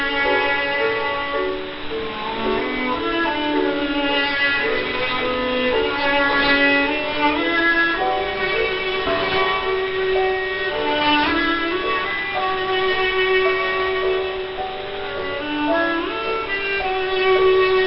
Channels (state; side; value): identical; both; correlation 1.00